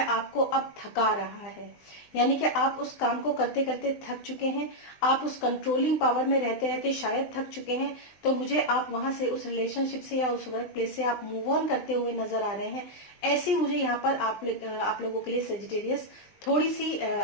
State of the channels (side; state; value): right; late; 20 ms